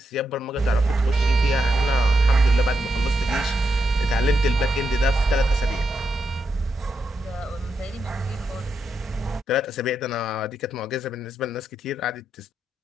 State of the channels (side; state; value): both; normal; correlation 0.84